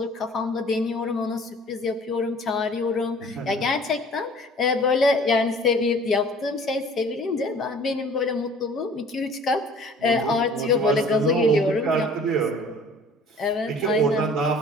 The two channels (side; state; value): both; normal; correlation 0.50